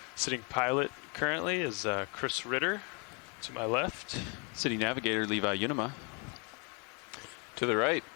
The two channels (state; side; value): quieter; right; 33.8 dB